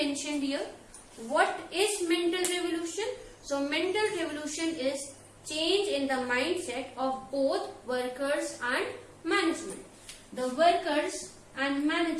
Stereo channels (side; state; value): both; identical; correlation 1.00